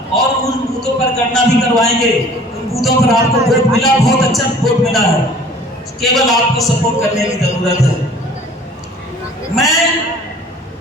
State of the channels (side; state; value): both; normal; correlation 0.49